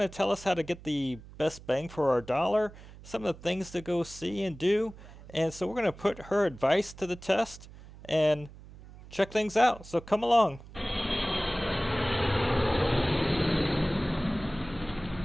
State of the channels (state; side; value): noise; right; hum, 18 dB below the sound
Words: tell us how to get the best bang for our dollar, some of the things to go see and do. And so we're going to put her advice to the test and check things out. So come along.